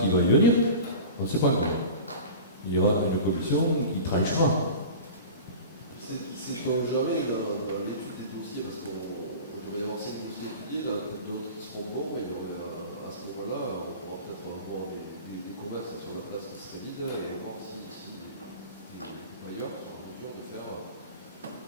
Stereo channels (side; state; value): both; inverted; correlation -0.35